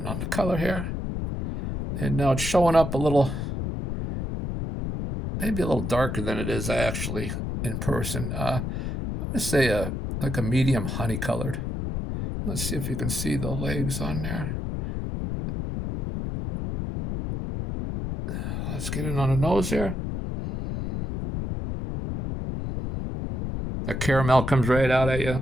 on the color here. And now it's showing up a little, maybe a little darker than it is actually in person. I'm going to say like a medium honey colored. Let's see if you can see the legs on there. Let's get it on the nose here. The caramel comes right out at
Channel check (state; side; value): noise; left; rumble, 3 dB below the sound